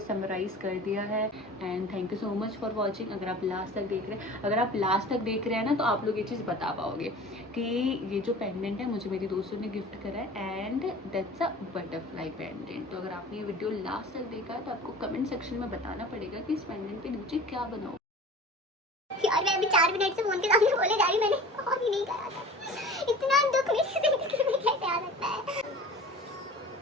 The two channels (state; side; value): normal; both; correlation 0.40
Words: समराइज़ कर दिया है and thank you so much for watching. अगर आप लास्ट तक देख रहे हैं, ना तो आप लोग ये चीज़ बता पाओगे कि ये जो पेंडेंट है मुझे मेरी दोस्तों ने गिफ्ट करा है and that's a butterfly pendant. तो अगर आपने ये वीडियो लास्ट तक देखा है तो आपको कमेंट सेक्शन में बताना पड़ेगा कि इस पेंडेंट के नीचे क्या बनाओ। यार मैं अभी 4 मिनट से फोन के सामने बोले जा रही, मैंने और ही नहीं करा था। इतना दुख मेरी जिंदगी में कैसे आ सकता है।